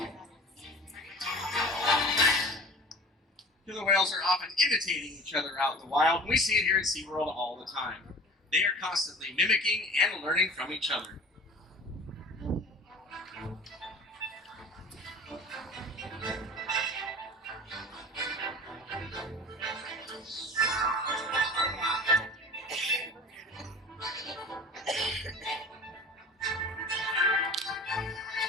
Killer whales are often imitating each other out in the wild, and we see it here at SeaWorld all the time. They are constantly mimicking and learning from each other.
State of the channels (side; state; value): both; normal; correlation 0.40